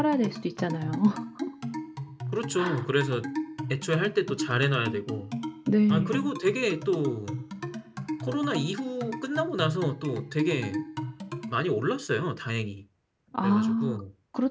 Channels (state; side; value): identical; both; correlation 1.00